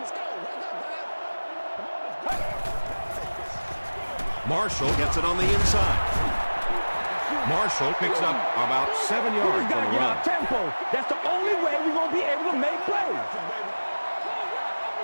Marshall gets it on the inside. Marshall picks up about 7 yards Got on to the get run. out tempo. That's the only way we're going to be able to make plays.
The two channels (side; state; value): both; inverted; correlation -1.00